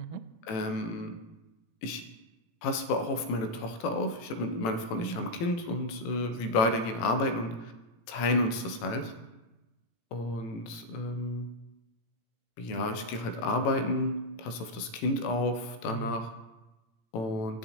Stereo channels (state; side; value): late; right; 18 ms